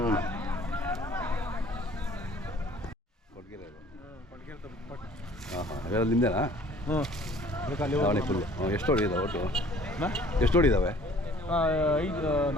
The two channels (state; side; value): normal; both; correlation 0.53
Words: ನಿಂದೇನಾ? ದಾವಣಿ ಫುಲ್ಲು. ಎಷ್ಟು ಹೊಡಿದಾವೆ ಒಟ್ಟು? ಎಷ್ಟು ಹೊಡಿದಾವೆ?